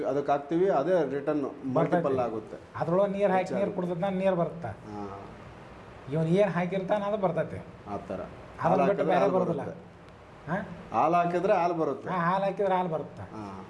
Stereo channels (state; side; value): identical; both; correlation 1.00